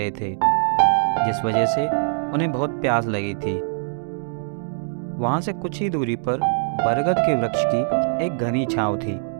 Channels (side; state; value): left; silent; digital silence